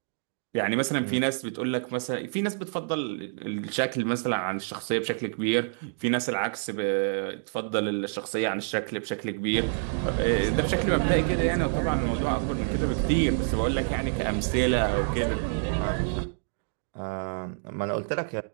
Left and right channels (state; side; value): silent; left; digital silence